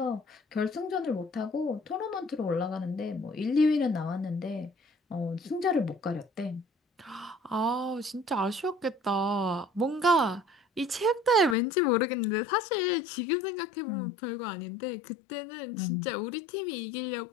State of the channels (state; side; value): drops out; right; at 11.6 s